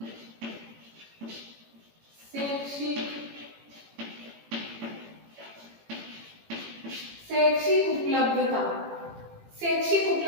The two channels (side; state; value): left; late; 18 ms